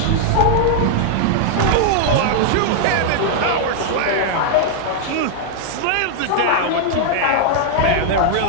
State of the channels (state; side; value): different; both; correlation 0.00